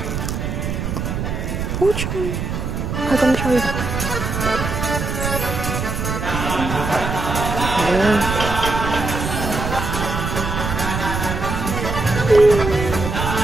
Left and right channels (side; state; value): right; noise; rumble, 3 dB below the sound